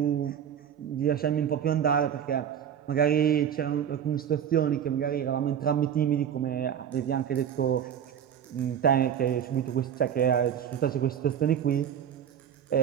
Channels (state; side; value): quieter; left; 8.9 dB